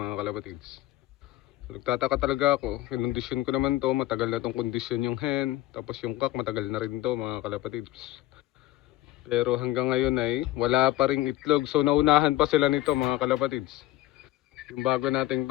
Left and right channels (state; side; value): quieter; right; 16.3 dB